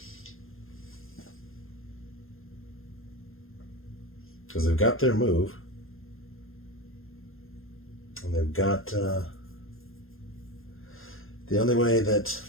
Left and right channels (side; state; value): right; late; 0.60 ms